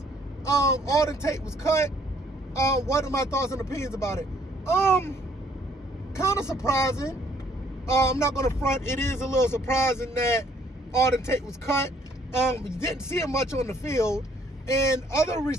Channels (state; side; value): normal; both; correlation 0.64